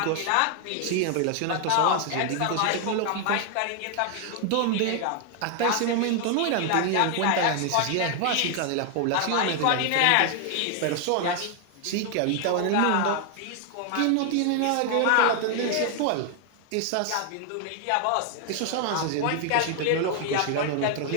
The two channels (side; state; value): both; different; correlation 0.00